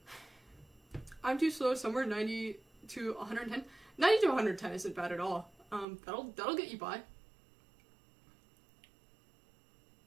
I'm too slow, somewhere 90 to 110. 90 to 110 isn't bad at all. That'll get you by.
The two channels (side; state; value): left; drops out; at 5.9 s